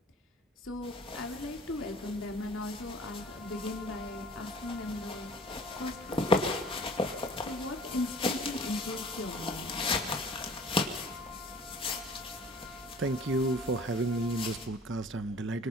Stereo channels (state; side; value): normal; both; correlation 0.48